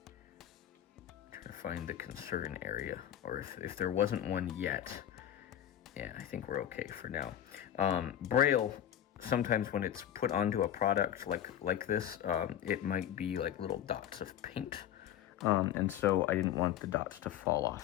trying to find the concern area, or if there wasn't one yet. Yeah, I think we're okay for now. Braille, sometimes when it's put onto a product like this, it might be like little dots of paint. And so I didn't want the dots to fall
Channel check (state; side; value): quieter; right; 11.0 dB